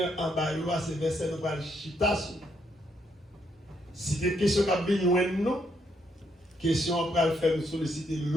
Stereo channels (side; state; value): both; normal; correlation 0.75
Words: en bas, c'est verset nous parle chita. Si des questions qui viennent nous, question après le faire nous solliciter